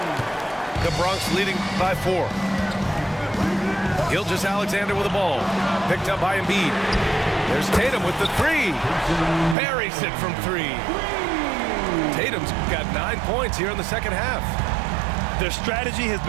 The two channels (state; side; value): drops out; left; at 9.6 s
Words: The Bronx leading by 4. Gilgeous-Alexander with the ball. Picked up by Embiid. There's Tatum with the 3. Buries it from 3. Tatum's got 9 points here in the second half. Their strategy has